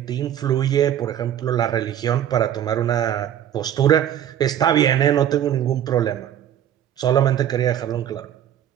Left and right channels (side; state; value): left; quieter; 10.5 dB